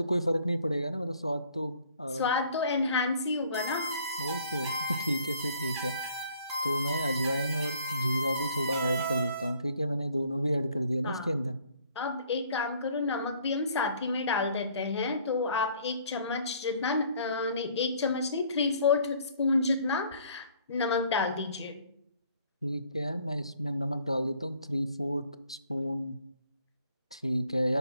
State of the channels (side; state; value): both; inverted; correlation -0.59